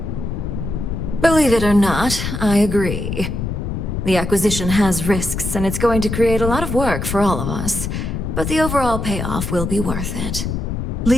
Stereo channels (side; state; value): left; noise; rumble, 4 dB below the sound